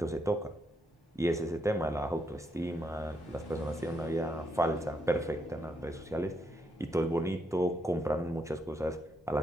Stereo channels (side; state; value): both; normal; correlation 0.78